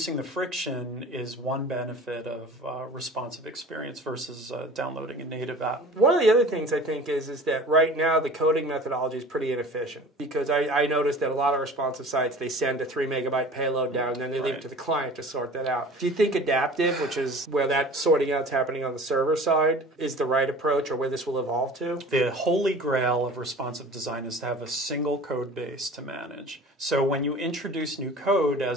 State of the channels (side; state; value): both; normal; correlation 0.41